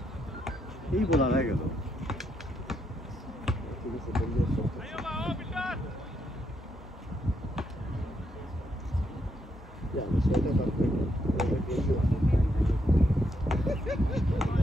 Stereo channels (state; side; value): normal; both; correlation 0.78